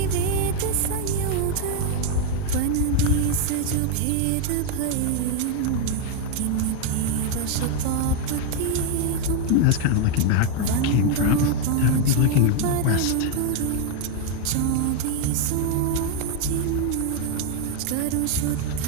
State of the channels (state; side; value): different; both; correlation 0.01